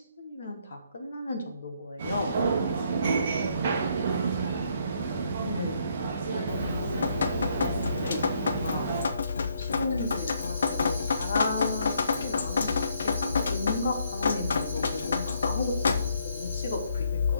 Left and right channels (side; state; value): both; inverted; correlation -0.71